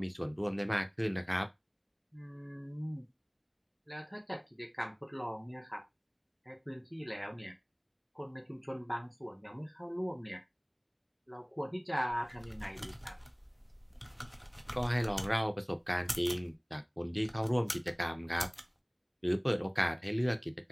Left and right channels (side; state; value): both; identical; correlation 1.00